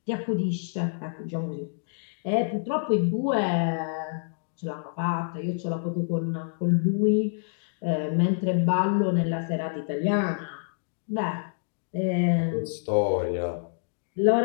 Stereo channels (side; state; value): right; silent; digital silence